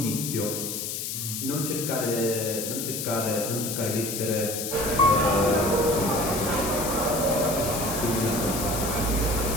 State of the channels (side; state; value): left; noise; hiss, 4 dB below the sound